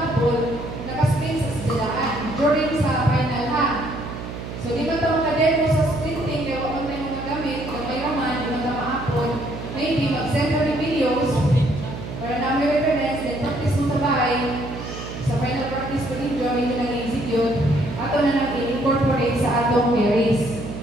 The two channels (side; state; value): right; noise; hum, 9 dB below the sound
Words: videos para namin reference, then practice mo sa bahay. Sa final practice ko ninyo, medyo nag-execute. Ato na nang i-incorporate sa atong carries.